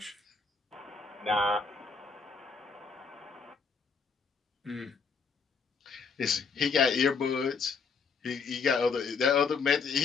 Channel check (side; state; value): right; quieter; 5.3 dB